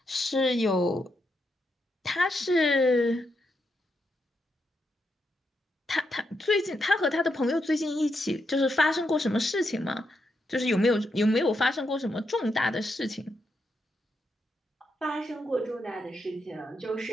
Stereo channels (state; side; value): normal; both; correlation 0.82